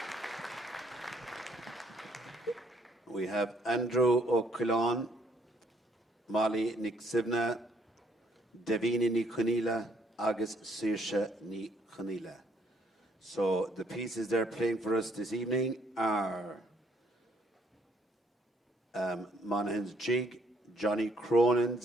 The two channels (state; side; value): normal; both; correlation 0.68